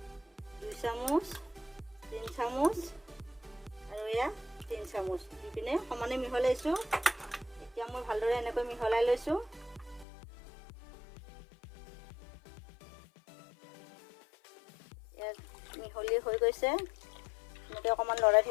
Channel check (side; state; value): right; drops out; at 10.1 s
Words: 2 চামুচ, 3 চামুচ আৰু এয়া 3 চামুচ দি পিনে সমানে মিহলাইছোঁ। এতিয়া মই ভালদৰে এনেকৈ মিহলাই লৈছোঁ। মিহলি হৈ গৈছে। এনেকৈ অকণমান লৰাই